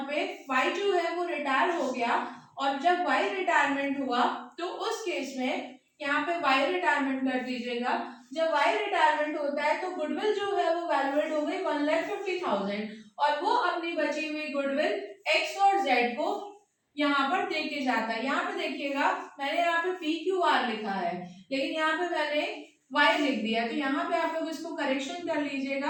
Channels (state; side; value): identical; both; correlation 1.00